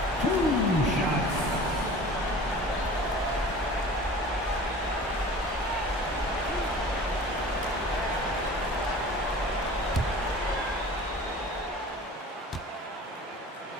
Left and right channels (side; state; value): both; normal; correlation 0.41